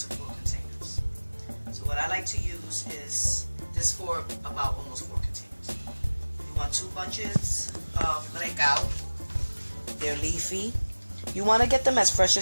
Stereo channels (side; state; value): both; inverted; correlation -1.00